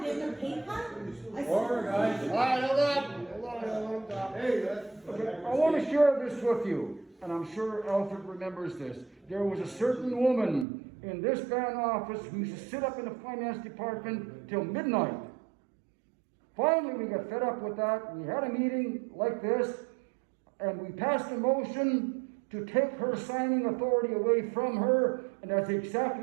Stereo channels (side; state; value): left; drops out; at 10.7 s